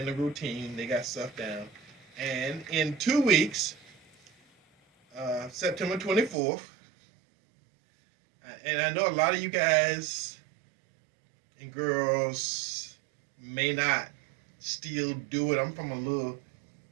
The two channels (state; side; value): drops out; left; at 6.4 s